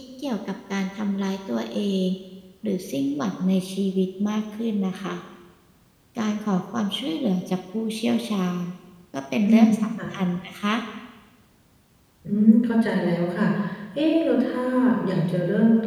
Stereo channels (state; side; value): identical; both; correlation 1.00